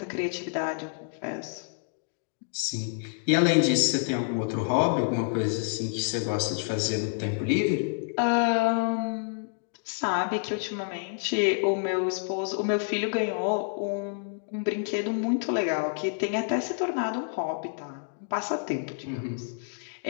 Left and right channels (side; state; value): right; silent; digital silence